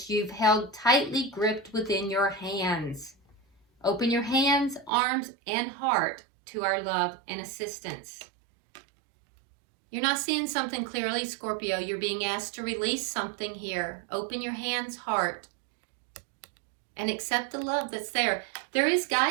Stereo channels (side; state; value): left; drops out; at 4.9 s